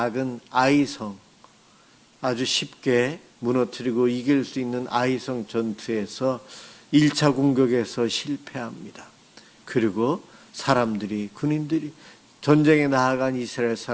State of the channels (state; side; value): identical; both; correlation 1.00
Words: 아이성, 아주 쉽게 무너뜨리고 이길 수 있는 아이성 전투에서 1차 공격에서 실패합니다. 그리고 사람들이, 군인들이, 전쟁에 나아간 이스라엘